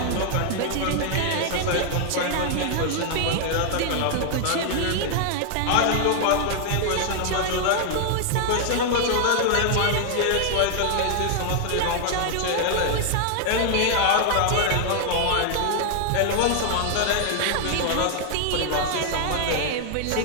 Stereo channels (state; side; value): different; both; correlation 0.00